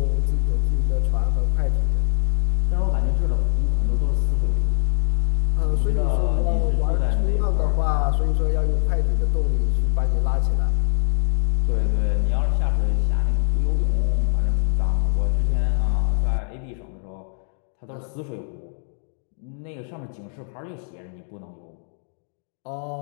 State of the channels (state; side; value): silent; right; 59 dB below the other